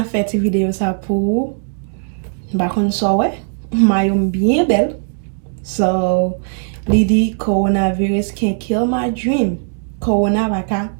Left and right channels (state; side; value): silent; left; 68 dB below the other